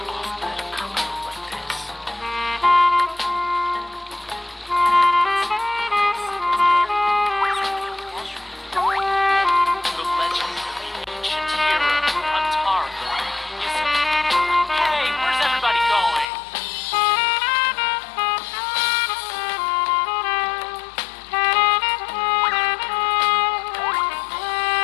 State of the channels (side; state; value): right; drops out; at 16.2 s